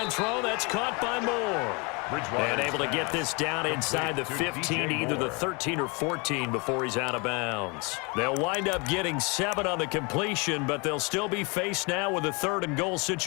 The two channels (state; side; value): quieter; right; 30.0 dB